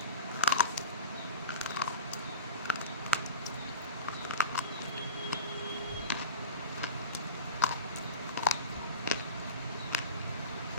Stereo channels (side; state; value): both; inverted; correlation -0.32